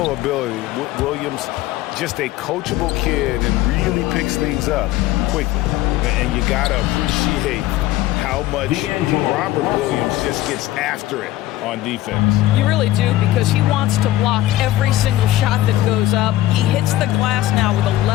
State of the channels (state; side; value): quieter; right; 15.1 dB